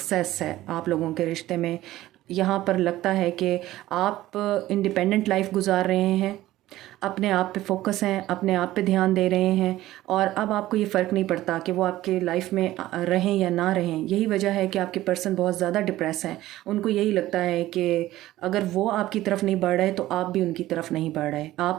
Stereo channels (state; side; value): quieter; left; 15.6 dB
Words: है आप लोगों के रिश्ते में। यहाँ पर लगता है कि आप इंडिपेंडेंट लाइफ गुजार रहे हैं अपने आप पे फोकस हैं, अपने आप पे ध्यान दे रहे हैं, और अब आपको ये फ़र्क नहीं पड़ता कि वो आपके लाइफ में रहें या ना रहें। यही वजह है कि आपके पर्सन बहुत ज़्यादा डिप्रेस हैं। उनको यही लगता है कि अगर वो आपकी तरफ नहीं बढ़ रहे तो आप भी उनकी तरफ नहीं बढ़ रहे,